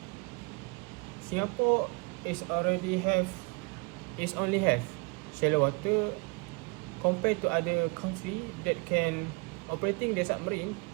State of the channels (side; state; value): left; quieter; 29.7 dB